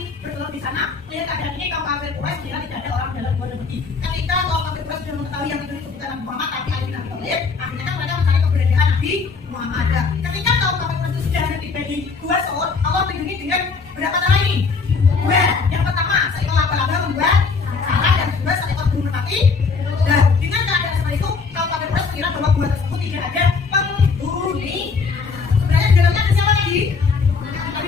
bertelur di sana. Melihat keadaan ini kaum kafir Quraisy mengira tidak ada orang dalam gua dan pergi. Ketika kaum kafir Quraisy sudah mengetahui yang itu bukan Nabi Muhammad tapi Ali bin Abi Thalib, akhirnya kan mereka mencari keberadaan Nabi Muhammad. Ketika kaum kafir Quraisy sudah tiba di Gua Sur, Allah melindungi dengan berapa cara ini? Dua. Yang pertama, seekor laba-laba membuat sarang, yang kedua seekor burung merpati. Dan dengan keadaan seperti itu, kaum kafir Quraisy mengira bahwa gua tersebut tidak ada penghuni. Sebenarnya di dalamnya ada siapa lagi? Nabi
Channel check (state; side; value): quieter; right; 4.8 dB